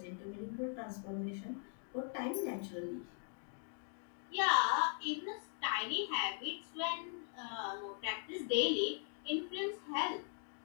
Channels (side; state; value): right; silent; 51 dB below the other